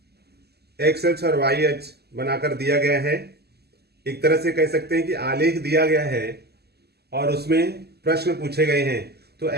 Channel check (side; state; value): left; late; 0.47 ms